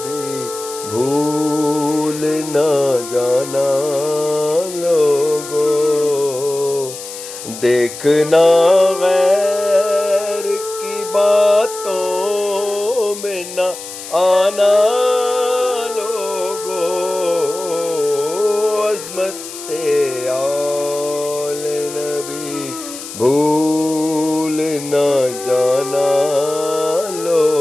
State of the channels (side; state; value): left; noise; hiss, 12 dB below the sound